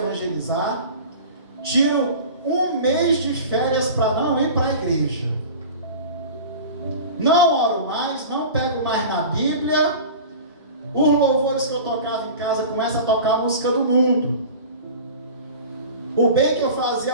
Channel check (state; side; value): inverted; both; correlation -0.37